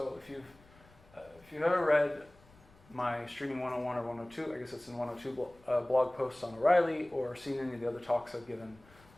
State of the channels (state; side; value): noise; left; rumble, 27 dB below the sound